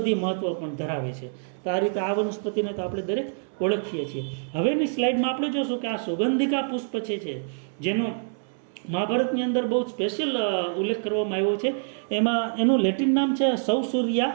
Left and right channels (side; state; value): left; silent; 61 dB below the other